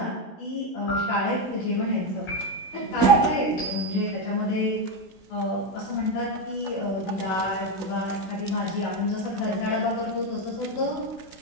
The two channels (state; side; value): late; right; 16 ms